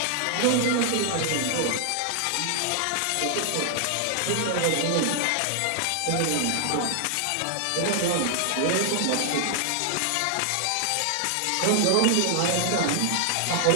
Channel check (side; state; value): both; different; correlation 0.00